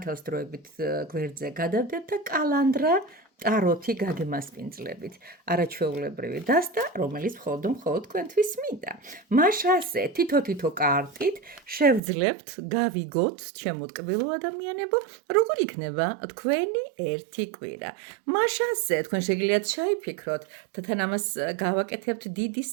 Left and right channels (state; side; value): drops out; left; at 12.0 s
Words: დროებით გვერდზე გადავდეთ და კალანდრა ტაროთი გაგემასპინძლებით. არაჩვეულებრივი დასტა, რომელიც მხოლოდ თქვენთვის მინდა. მაშასე თითო კარტით შევძლებთ, გავიგოთ, ჩემო ტკბილო ადამიანებო, როგორ იქნება თქვენი ერთი კვირა. მაშასე თქვენ შეგიძლიათ ჩაიფიქროთ და თან ამას გავაკეთებთ დიდის